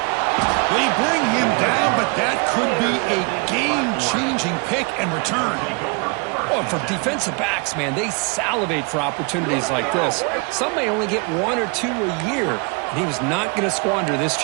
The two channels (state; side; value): quieter; left; 32.6 dB